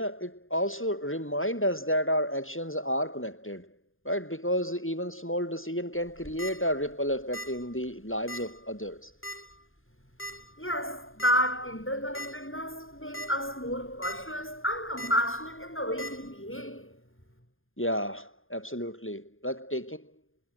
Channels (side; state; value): right; late; 0.59 ms